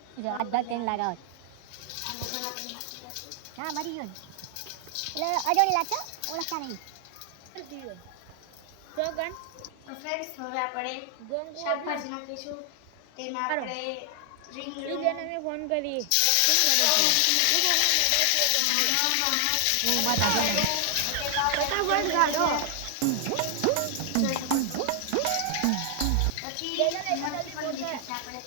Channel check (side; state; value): both; different; correlation 0.00